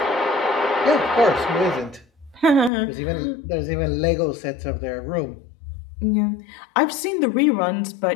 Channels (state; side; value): drops out; right; at 2.7 s